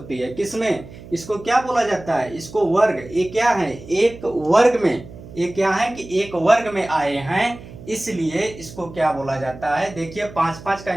है। किसमें, इसको क्या बोला जाता है, इसको वर्ग, ये क्या है एक वर्ग में, ये क्या है कि एक वर्ग में आए हैं, इसलिए इसको क्या बोला जाता है। देखिए 5-5 का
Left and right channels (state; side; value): noise; right; hum, 16 dB below the sound